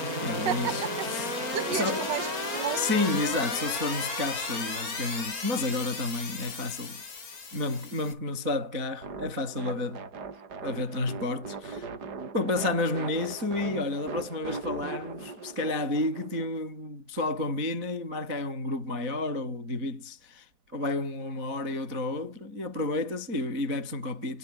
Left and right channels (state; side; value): late; left; 4.4 ms